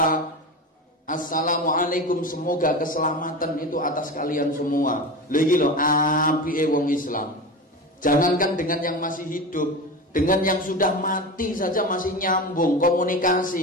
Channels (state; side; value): normal; both; correlation 0.26